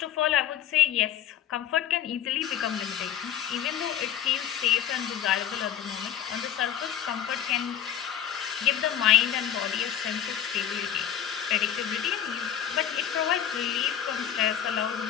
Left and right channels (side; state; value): right; quieter; 10.0 dB